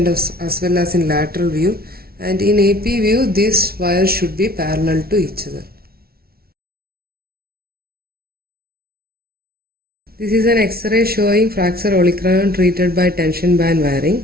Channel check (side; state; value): left; late; 0.44 ms